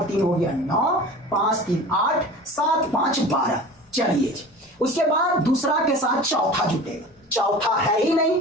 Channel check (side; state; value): both; normal; correlation 0.38